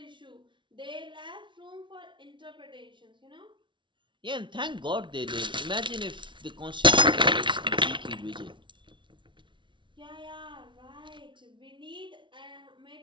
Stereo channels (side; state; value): left; late; 0.24 ms